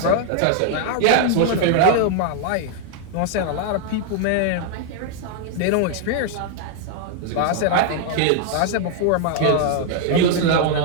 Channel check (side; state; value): both; different; correlation 0.00